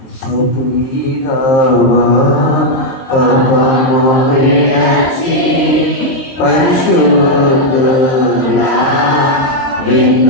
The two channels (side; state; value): right; late; 22 ms